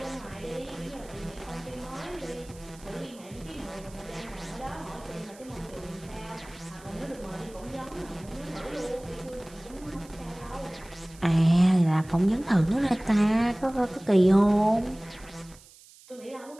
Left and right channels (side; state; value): right; noise; hiss, 23 dB below the sound